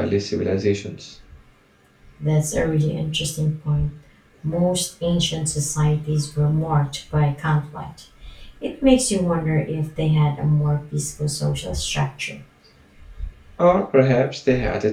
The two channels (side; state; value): both; identical; correlation 1.00